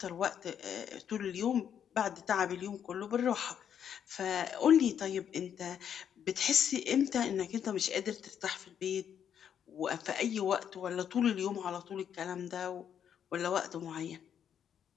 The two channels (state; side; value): quieter; right; 8.7 dB